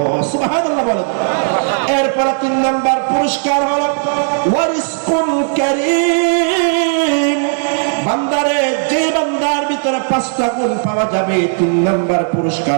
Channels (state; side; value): silent; left; 59 dB below the other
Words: সুবহানাল্লাহ বলেন। এরপর 3 নম্বর পুরস্কার হলো ওয়ারিজকুন কারীম। বান্দারে যে বান্দার ভিতরে 5টা গুণ পাওয়া যাবে 3 নম্বর